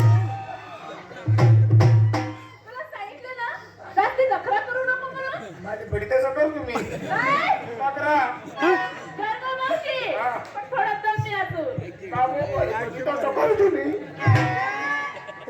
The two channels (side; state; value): both; identical; correlation 1.00